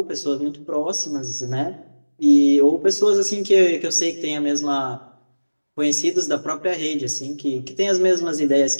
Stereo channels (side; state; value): both; inverted; correlation -1.00